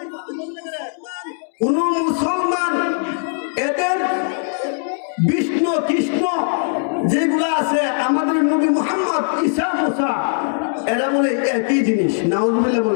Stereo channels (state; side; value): silent; right; digital silence